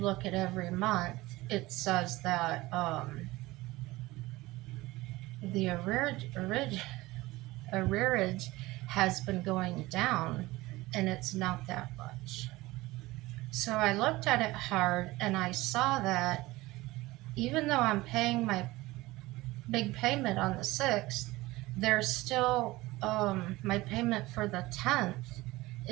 at every month, it says that the arrearage has been going down, and it's not that much. So I looked at it hard, and I saw that even though I'm paying my big payment on the 6th, there's still my payment for the 10th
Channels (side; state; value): left; quieter; 19.6 dB